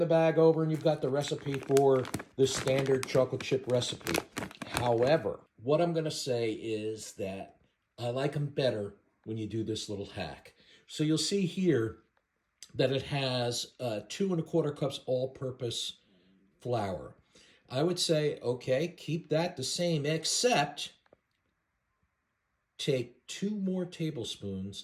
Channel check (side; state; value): both; identical; correlation 1.00